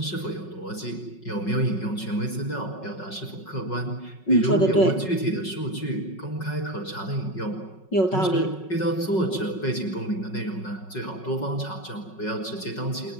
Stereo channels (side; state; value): right; late; 5.4 ms